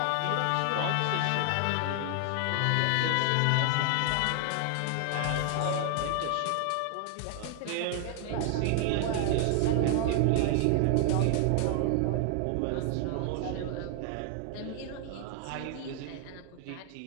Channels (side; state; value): both; different; correlation 0.00